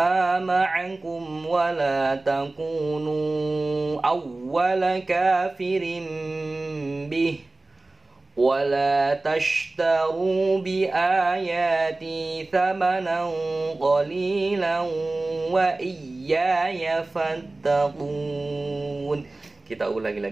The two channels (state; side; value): quieter; left; 3.0 dB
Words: معكم ولا تكونوا أول كافر به ولا تشتروا بآياتي ثمنا قليلا وإياي فاتقون. Kita ulangi